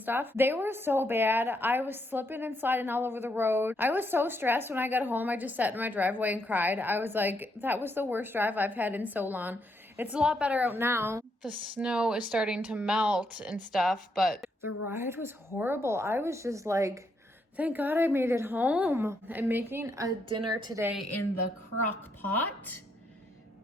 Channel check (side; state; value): both; normal; correlation 0.77